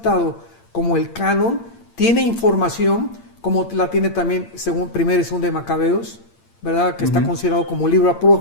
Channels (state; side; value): late; right; 8.7 ms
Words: como el canon, tiene información, como la tiene también según 1 y 2 de Macabeos, ¿verdad?, que está considerado como libro